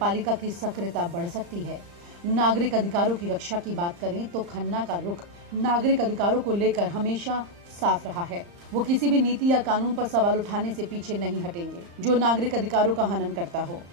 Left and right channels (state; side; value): late; left; 35 ms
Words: की सक्रियता बढ़ सकती है। नागरिक अधिकारों की रक्षा की बात करें तो खन्ना का रुख नागरिक अधिकारों को लेकर हमेशा साफ रहा है। वो किसी भी नीति या कानून पर सवाल उठाने से पीछे नहीं हटेंगे जो नागरिक अधिकारों का हनन करता हो।